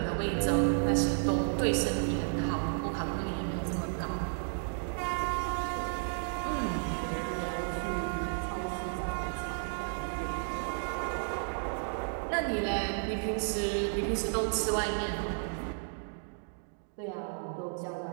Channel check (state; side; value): silent; left; digital silence